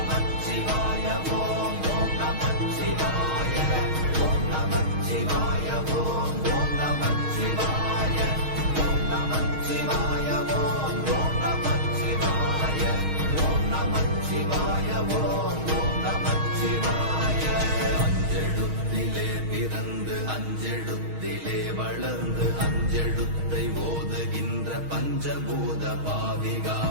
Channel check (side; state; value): left; late; 6.4 ms